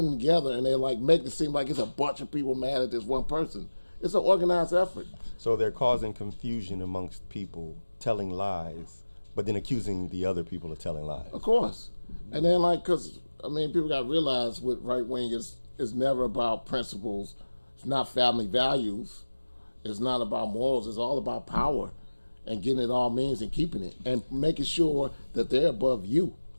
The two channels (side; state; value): both; inverted; correlation -1.00